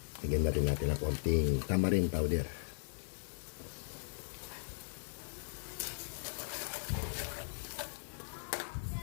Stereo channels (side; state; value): right; silent; digital silence